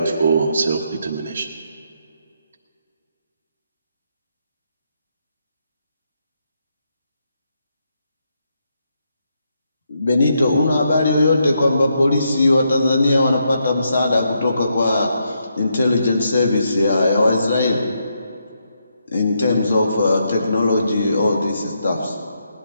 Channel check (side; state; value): both; inverted; correlation -0.79